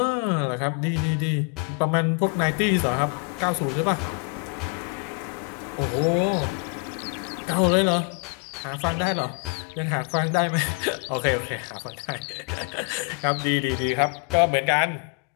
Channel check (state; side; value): quieter; right; 36.0 dB